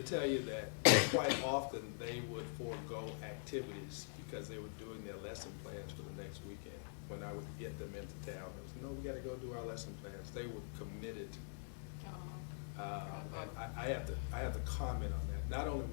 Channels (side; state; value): right; silent; digital silence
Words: tell you that quite often they would forego activities because they were doing their lesson plans for the next weekend. When I would get them into town, it was, no, we got to go do our lesson plans. They were committed. And I have to comment on that. Not only